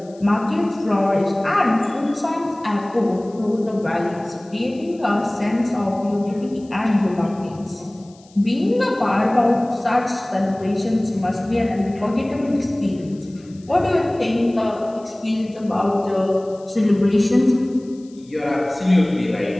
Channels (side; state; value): left; noise; hiss, 28 dB below the sound